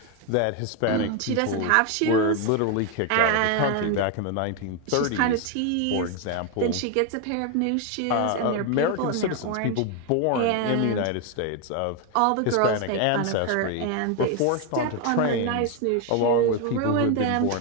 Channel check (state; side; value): different; both; correlation 0.01